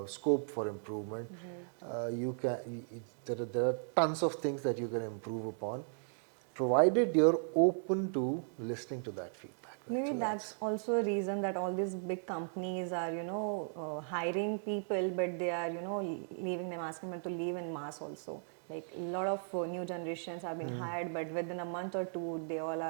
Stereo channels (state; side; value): silent; left; digital silence